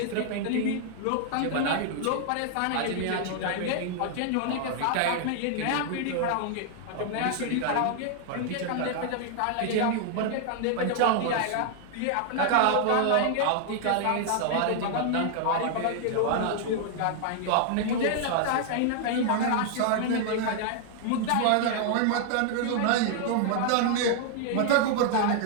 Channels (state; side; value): different; both; correlation 0.00